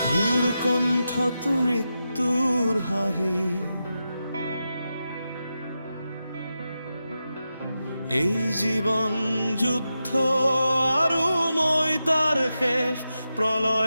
মোৰ কণ্ঠত মৃত্যুৰ হাঁহি, এই জীৱন যুদ্ধ আৰু মই তাৰ শেষ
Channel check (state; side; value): inverted; both; correlation -0.89